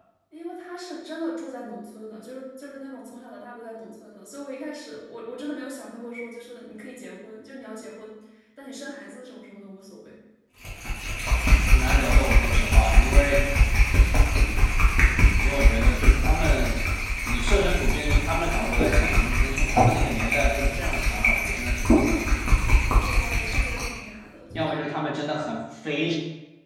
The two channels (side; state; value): both; identical; correlation 1.00